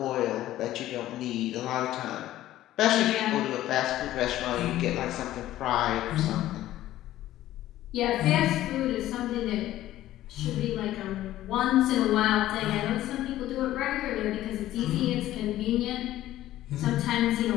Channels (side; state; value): right; quieter; 14.2 dB